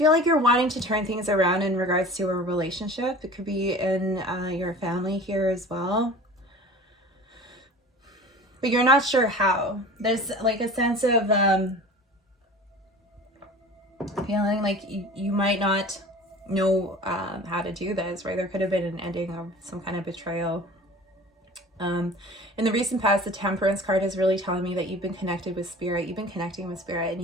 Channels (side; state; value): both; normal; correlation 0.40